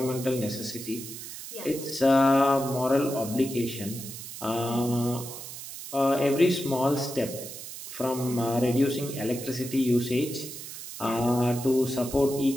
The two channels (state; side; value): noise; right; hiss, 11 dB below the sound